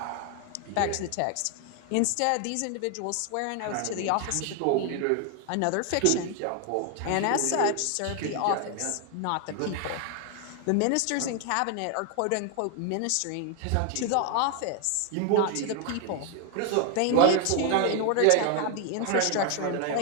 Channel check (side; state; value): both; different; correlation 0.00